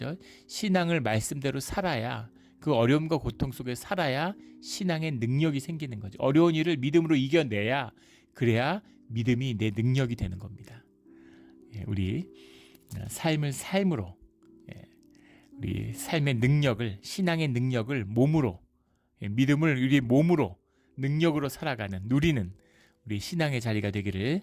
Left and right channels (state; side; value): identical; both; correlation 1.00